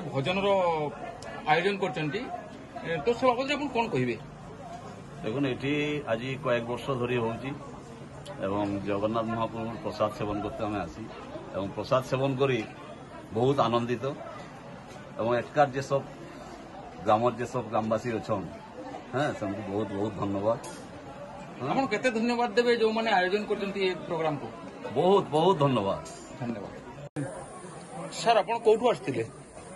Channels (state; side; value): identical; both; correlation 1.00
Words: भजन आयोजन कर तो सब बाबद आप कौन कहे? देखो ये आज कয়েক वर्ष धरी हो जगन्नाथ महाप्रभु प्रसाद सेवन करते आम आसी प्रसाद सेवन करी बहुत आनंदित एकार जे सब ग्राम जे सब ग्रामवासी अच्छा हाँ से बहुत बहुत धन्यवाद। आप केते धन्यवाद देवे जो मैंने आयोजन कर प्रोग्राम को? बहुत बहुत धन्यवाद। धन्यवाद सर। आप कौटू आसते?